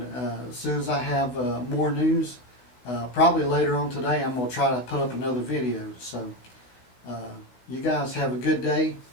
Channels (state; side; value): late; right; 16 ms